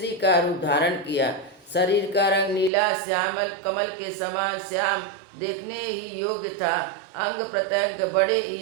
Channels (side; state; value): left; drops out; at 2.7 s